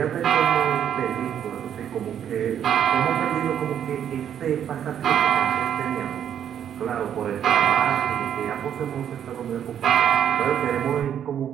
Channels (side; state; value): left; quieter; 9.4 dB